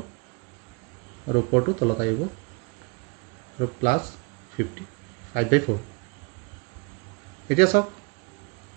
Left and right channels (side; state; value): left; quieter; 30.2 dB